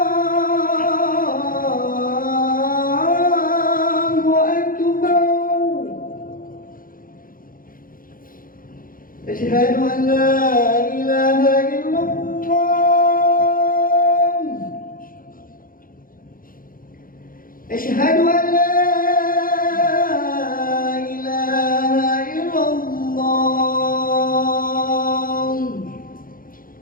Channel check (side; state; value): right; late; 0.41 ms